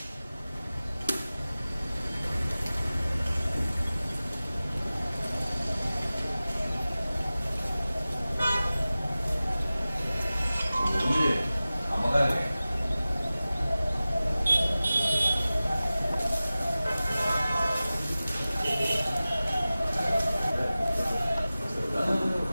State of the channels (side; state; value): both; inverted; correlation -0.97